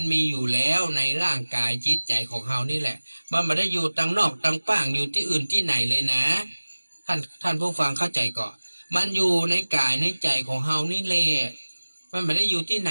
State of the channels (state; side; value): inverted; both; correlation -1.00